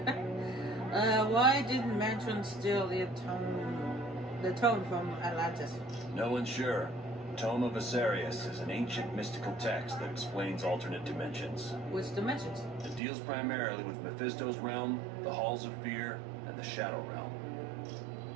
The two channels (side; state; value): left; drops out; at 13.0 s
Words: Why didn't Mandarin steal the tome from Atlantis? No one's sure. Tome of Asarius is an ancient mystical text that explains alternate dimensions. Which dimensions? It deals primarily with Mephisto's realm, the Halls of Fear, and the Shadow Realm.